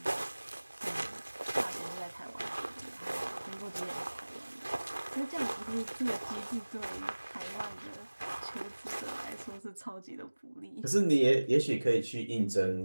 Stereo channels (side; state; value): both; inverted; correlation -1.00